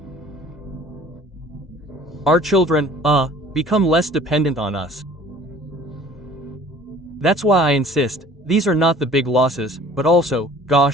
Our children, become less dependent on us. That's why I insist, these are not the big losses, but also,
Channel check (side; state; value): both; normal; correlation 0.50